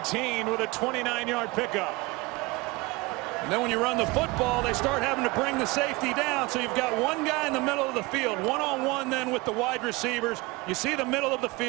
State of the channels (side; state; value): left; quieter; 23.6 dB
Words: with a 29-yard pickup. And then when you run the football, they start having to bring the safety down. So you've got one guy in the middle of the field, one-on-one then with the wide receivers. You see the middle of the